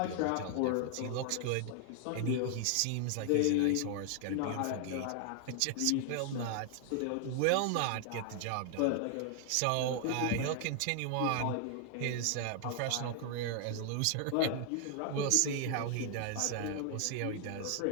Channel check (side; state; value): both; different; correlation 0.00